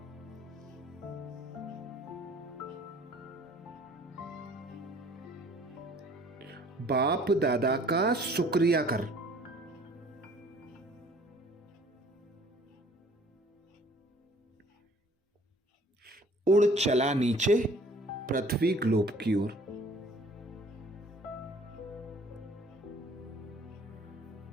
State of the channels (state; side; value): normal; both; correlation 0.54